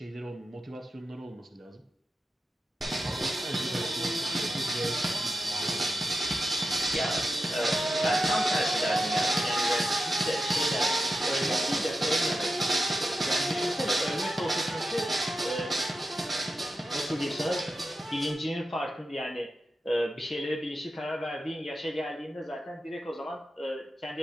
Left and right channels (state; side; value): normal; both; correlation 0.91